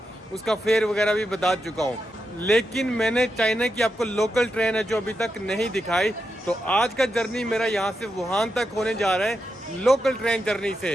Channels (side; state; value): both; normal; correlation 0.86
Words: उसका फेयर वगैरह भी बता चुका हूँ। लेकिन मैंने चाइना की आपको लोकल ट्रेन है जो अभी तक नहीं दिखाई। तो आज का जर्नी मेरा यहाँ से वुहान तक होने जा रहा है लोकल ट्रेन जर्नी